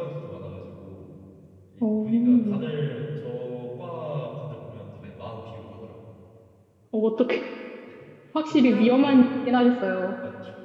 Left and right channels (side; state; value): both; identical; correlation 1.00